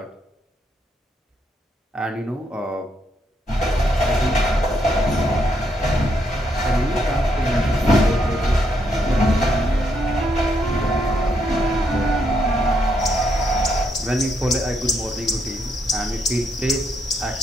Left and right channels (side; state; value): both; normal; correlation 0.76